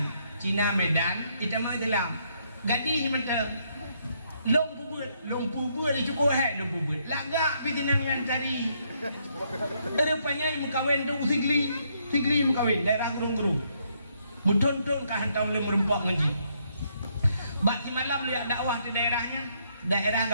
Cina Medan kita mau Islam gadis macam long pubut itu kau long pubut lagak pitinangan cari rupanya mukawin tu sigli mukawin daerah gurung muton-ton kah hantam le merempak ngaji bak di malam lihat dakwah di daerah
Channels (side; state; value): both; inverted; correlation -0.73